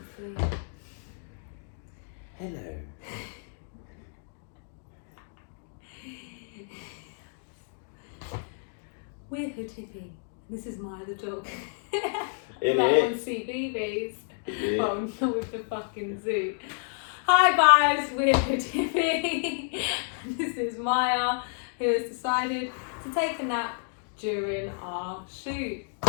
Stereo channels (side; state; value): right; silent; 58 dB below the other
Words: Hello. We're Hood Hippy. This is Maya the dog. It like is. on CBeebies. Yeah. Oh, not with the fucking zoo. Hi guys, we're Hood Hippy. This is Maya, who has decided to take a nap during our shoot.